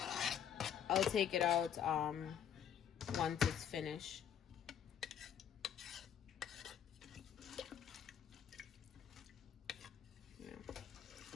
I'll take it out once it's finished. Yeah.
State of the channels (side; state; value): right; quieter; 9.1 dB